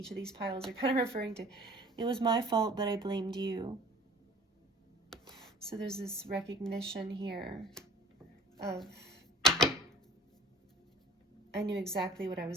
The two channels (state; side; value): normal; both; correlation 0.49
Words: of these piles are kind of referring to, it was my fault, but I blamed you. So there's this recognition here of, I knew exactly what I